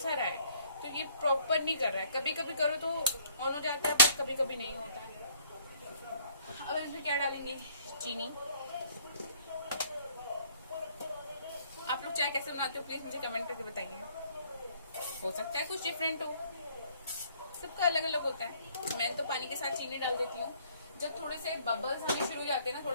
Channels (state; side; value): inverted; both; correlation -0.61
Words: रहा है, तो ये प्रॉपर नहीं कर रहा है। कभी कभी करो तो ऑन हो जाता है, पर कभी कभी नहीं होता है। अब इसमें क्या डालेंगे, चीनी। आप लोग चाय कैसे बनाते हो प्लीज मुझे कमेंट करके बताइए। हो सकता है कुछ डिफरेंट हो, सबका अलग अलग होता है। मैं तो पानी के साथ चीनी डाल देती हूँ। जब थोड़े से बबल्स आने शुरू हो जाते हैं ना,